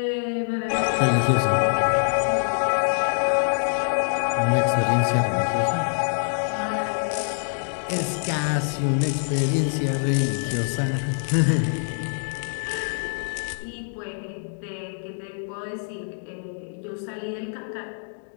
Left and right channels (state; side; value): silent; right; digital silence